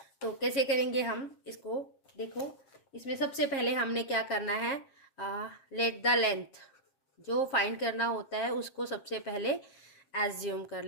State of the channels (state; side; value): late; right; 7.5 ms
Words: तो कैसे करेंगे हम इसको, देखो इसमें सबसे पहले हमने क्या करना है, लेट द लेंथ जो फाइंड करना होता है उसको सबसे पहले एज्यूम कर